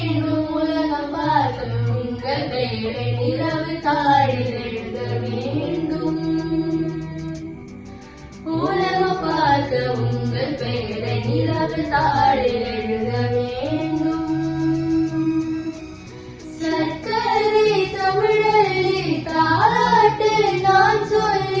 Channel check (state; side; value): identical; both; correlation 1.00